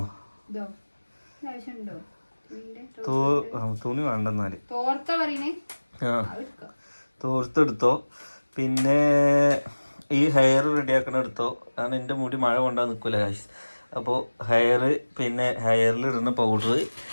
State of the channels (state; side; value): inverted; both; correlation -1.00